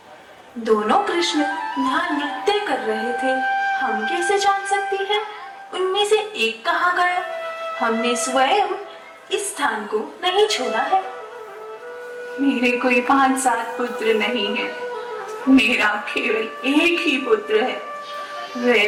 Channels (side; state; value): both; identical; correlation 1.00